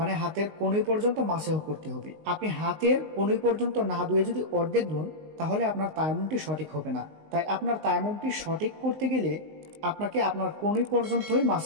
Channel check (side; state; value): left; late; 19 ms